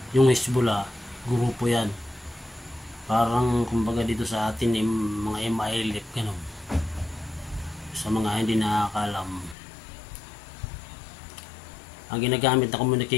yung Hezbollah, grupo yan. Parang kumbaga dito sa atin mga MILF, ganun. Sa mga hindi nakakalam, ang ginagamit na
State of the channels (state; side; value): drops out; right; at 9.6 s